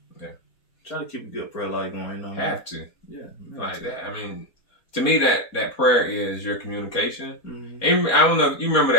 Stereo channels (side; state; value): right; late; 4.2 ms